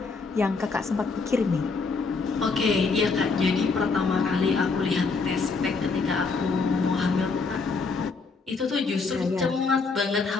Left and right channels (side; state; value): right; quieter; 4.4 dB